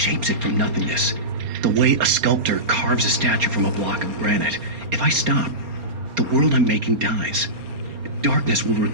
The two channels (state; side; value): late; left; 4.3 ms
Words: it from nothingness. The way a sculptor carves a statue from a block of granite. If I stop, the world I'm making dies. Darkness will